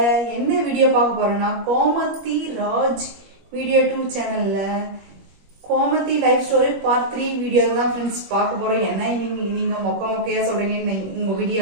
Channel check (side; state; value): left; late; 21 ms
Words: என்ன வீடியோ பார்க்க போறோம்னா கோமதி ராஜ் வீடியோ 2 சேனல்ல Gomathi life story part 3 video தான் ஃப்ரெண்ட்ஸ் பார்க்க போறோம். என்ன நீங்க மொக்கையா சொல்றீங்க, உங்க